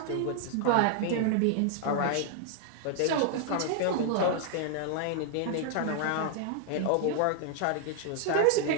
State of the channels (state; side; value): different; both; correlation 0.00